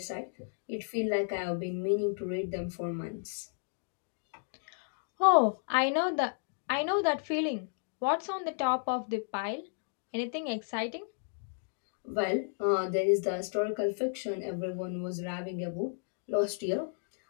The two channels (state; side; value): silent; right; digital silence